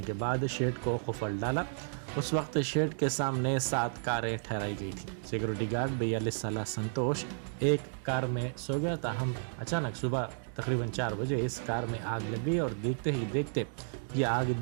के बाद शेड को खुफल डाला। उस वक्त शेड के सामने 7 कारें ठहराई गई थी। सिक्योरिटी गार्ड 42 साल संतोष एक कार में सो गया। ताहम अचानक सुबह तकरीबन 4 बजे इस कार में आग लग गई और देखते ही देखते ये आग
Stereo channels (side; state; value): left; silent; digital silence